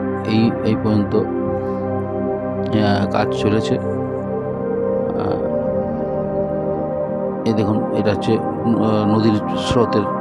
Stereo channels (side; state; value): both; identical; correlation 1.00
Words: এই পর্যন্ত কাজ চলেছে। এই দেখুন এটা হচ্ছে নদীর স্রোতের